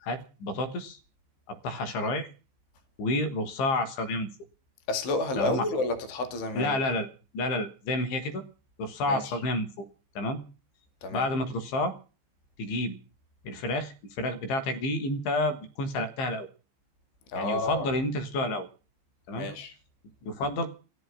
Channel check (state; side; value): late; right; 15 ms